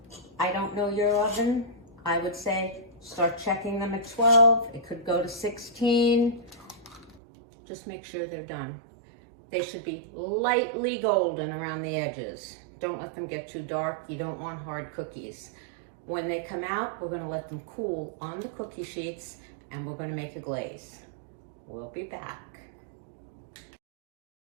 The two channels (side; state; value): left; drops out; at 7.2 s